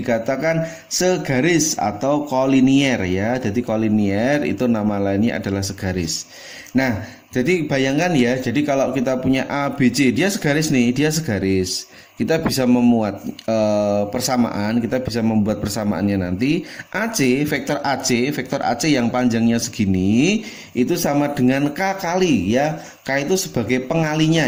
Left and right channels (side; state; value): both; identical; correlation 1.00